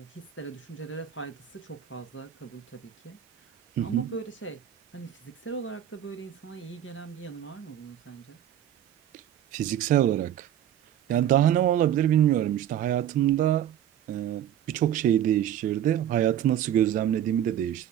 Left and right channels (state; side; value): quieter; left; 10.7 dB